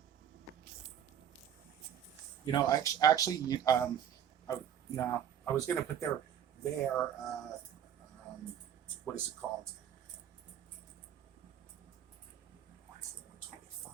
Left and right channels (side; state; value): left; quieter; 9.6 dB